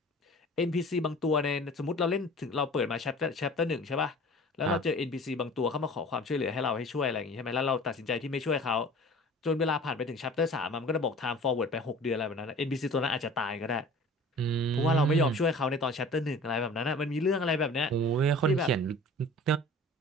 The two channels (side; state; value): both; normal; correlation 0.43